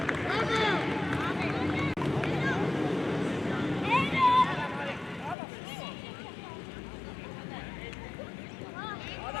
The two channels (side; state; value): right; drops out; at 5.4 s